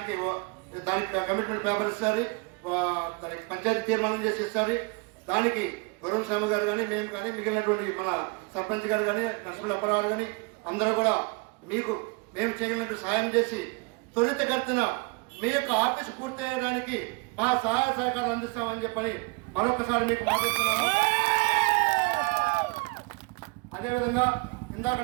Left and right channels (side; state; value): left; quieter; 29.5 dB